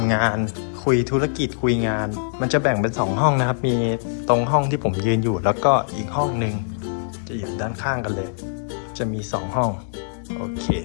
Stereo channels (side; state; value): right; silent; 61 dB below the other